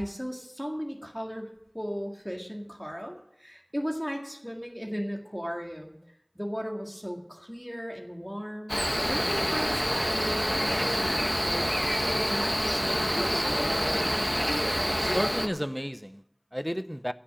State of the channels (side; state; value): both; identical; correlation 1.00